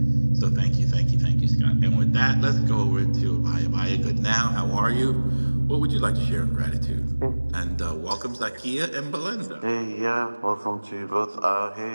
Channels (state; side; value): inverted; both; correlation -1.00